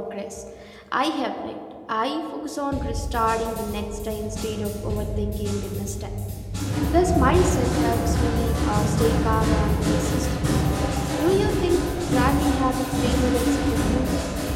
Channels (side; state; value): both; identical; correlation 1.00